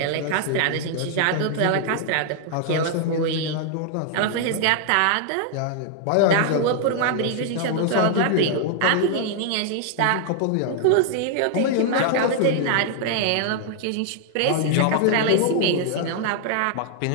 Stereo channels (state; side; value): different; both; correlation 0.00